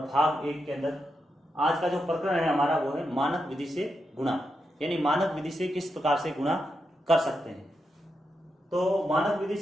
भाग 1 के अंदर आज का जो प्रकरण है हमारा वो है मानक विधि से गुणा, यानी मानक विधि से किस प्रकार से गुणा कर सकते हैं। तो मानक विधि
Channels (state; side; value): normal; both; correlation 0.85